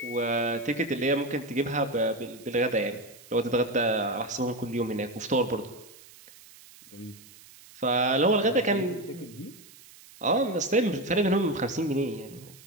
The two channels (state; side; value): noise; right; hiss, 22 dB below the sound